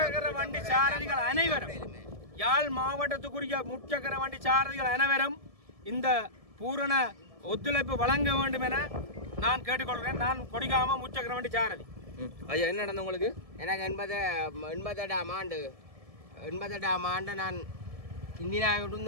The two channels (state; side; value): late; left; 1.7 ms